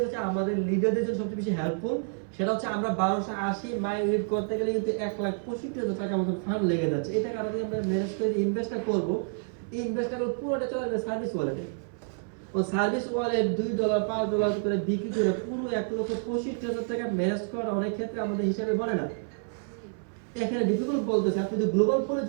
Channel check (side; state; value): left; silent; 59 dB below the other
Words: হচ্ছে আমাদের লিডারদের জন্য সবচেয়ে বেশি হেল্পফুল। সেটা হচ্ছে আমরা 1280 মাই ইউনিট করতে গেলে কিন্তু 1,65,000 টাকা মতো ফান্ড লেগে যাচ্ছে। এটা কারণে আমরা ম্যানেজ করে ইনভেস্টটা করব, এই ইনভেস্টটা করব পুরোটা চলে যাবে সার্ভিস ওয়ালেটে। ও সার্ভিস ওয়ালেট $2 $5 করে বিক্রি করে পুরো 1,65,000 টাকা ম্যানেজ করা অনেক ক্ষেত্রে আমাদের হিসাবে বলে না। এখানে ডিফিকাল্ট বলতেছে আপনি যদি গ্লোবাল পুলে